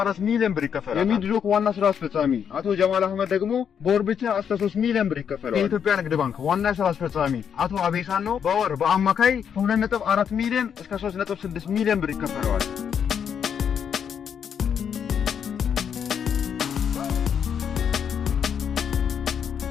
ሚሊዮን ብር ይከፈላል። የሚድሮክ ዋና ስራ አስፈጻሚ አቶ ጀማል አህመድ ደግሞ በወር ብቻ እስከ 3 ሚሊዮን ብር ይከፈላል። የኢትዮጵያ ንግድ ባንክ ዋና ስራ አስፈጻሚ አቶ አቤሳኖ በወር በአማካይ 2.4 ሚሊዮን እስከ 3.6 ሚሊዮን ብር ይከፈላል።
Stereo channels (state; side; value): quieter; right; 7.8 dB